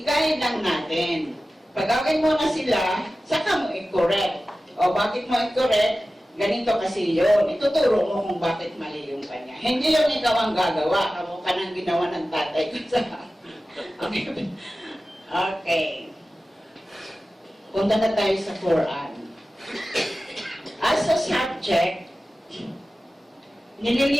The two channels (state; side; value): normal; both; correlation 0.95